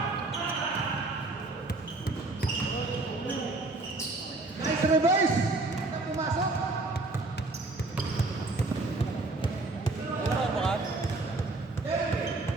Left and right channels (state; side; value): quieter; left; 3.1 dB